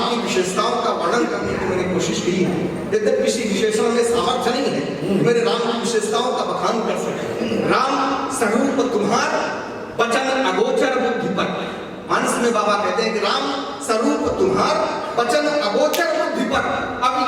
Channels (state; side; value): identical; both; correlation 1.00